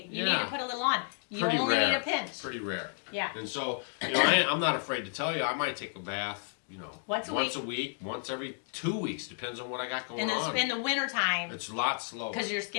you need to Yeah. put a little on. You Pretty only rare. need a pinch. Pretty rare. Yeah. And so, I'm not afraid to tell you, I might take a bath, Once a week, once every 2 weeks, depends on what I got going on. In the wintertime, It's a lot slower. because your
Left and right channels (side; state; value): right; silent; 57 dB below the other